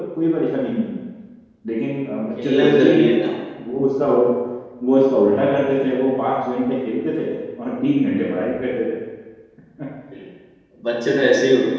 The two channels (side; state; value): both; identical; correlation 1.00